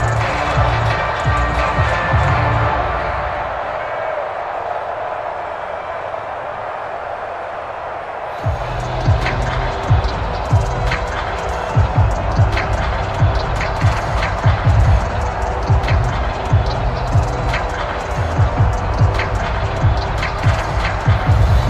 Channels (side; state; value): both; identical; correlation 1.00